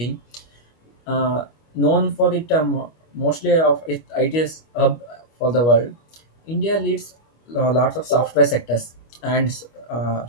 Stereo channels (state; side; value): late; right; 25 ms